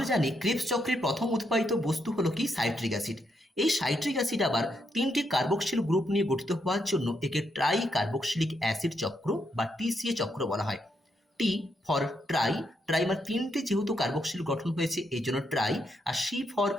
জানি ক্রেবস চক্রের প্রথম উৎপাদিত বস্তু হলো কি? Citric acid. এই সাইট্রিক অ্যাসিড আবার তিনটি কার্বক্সিল গ্রুপ নিয়ে গঠিত হওয়ার জন্য একে ট্রাই কার্বক্সিলিক অ্যাসিড চক্র বা টিসিএ চক্র বলা হয়। টি ফর ট্রাইমার তিনটে যেহেতু কার্বক্সিল গঠন হয়েছে এই জন্য ট্রাই, আর সি ফর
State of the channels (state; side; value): normal; both; correlation 0.79